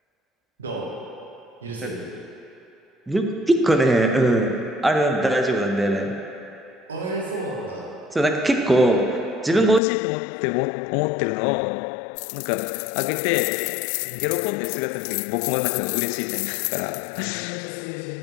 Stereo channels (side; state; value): right; drops out; at 9.8 s